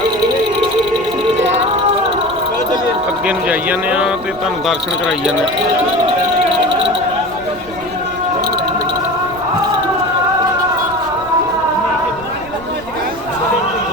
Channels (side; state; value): right; noise; rumble, 19 dB below the sound